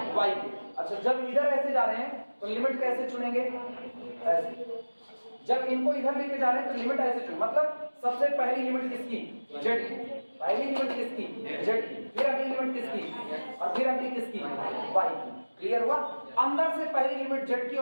के। अच्छा, जब इधर ऐसे जा रहे हैं तो लिमिट कैसे चुनेंगे, ऐसे। जब इनको इधर लेके जा रहे हैं तो लिमिट ऐसे चुन, मतलब सबसे पहली लिमिट किसकी, z की, पहली लिमिट किसकी, z की, फिर अगली लिमिट किसकी, और फिर अगली किसकी, y की। क्लियर हुआ? अंदर से पहली लिमिट z की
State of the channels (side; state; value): both; inverted; correlation -1.00